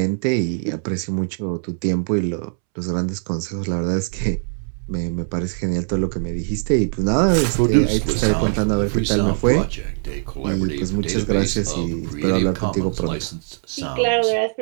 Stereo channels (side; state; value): left; silent; 65 dB below the other